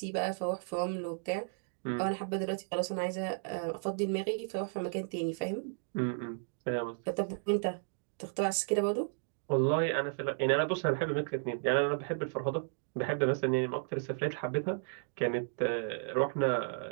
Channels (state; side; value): silent; left; digital silence